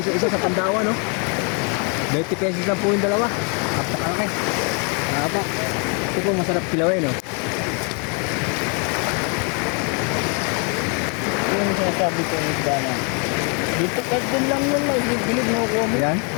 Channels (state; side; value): quieter; right; 36.6 dB